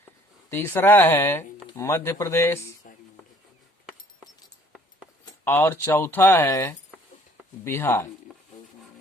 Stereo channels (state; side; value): normal; both; correlation 0.57